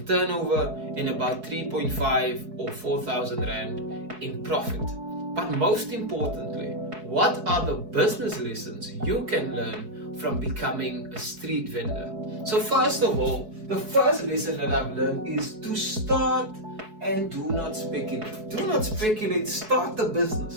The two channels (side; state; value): left; late; 4.7 ms